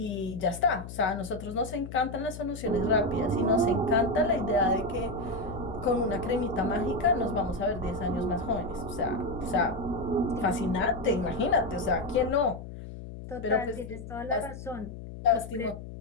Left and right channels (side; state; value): left; noise; hum, 11 dB below the sound